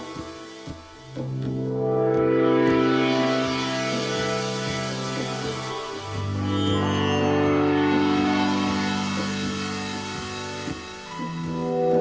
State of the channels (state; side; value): identical; both; correlation 1.00